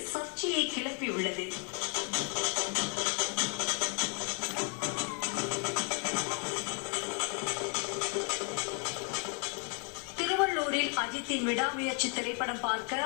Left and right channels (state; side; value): quieter; right; 36.8 dB